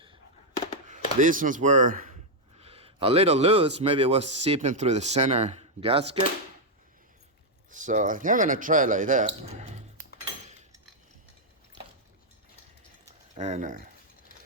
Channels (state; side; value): normal; both; correlation -0.01